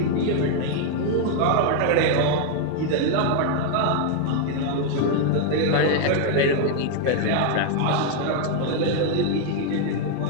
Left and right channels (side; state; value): both; different; correlation 0.00